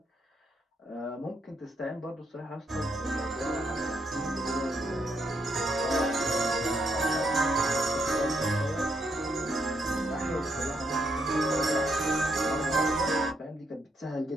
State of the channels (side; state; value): both; normal; correlation 0.76